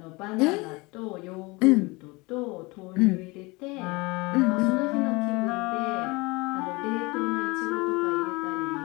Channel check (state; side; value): quieter; right; 24.6 dB